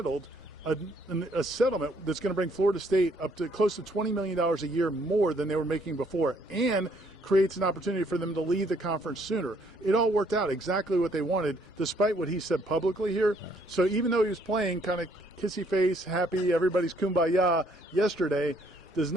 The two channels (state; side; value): normal; both; correlation 0.66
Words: a settlement that's going to bring Florida State up to close to $20 million a year more than they were making before, and creates an opportunity for them to leave the conference sooner. It all worked out exactly what they wanted, despite what he said publicly here. So even though he was playing kind of kissy face, happy, everybody's kumbaya yesterday, does